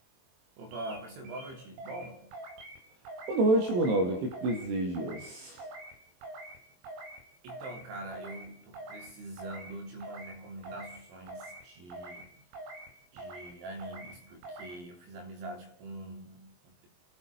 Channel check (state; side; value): late; left; 23 ms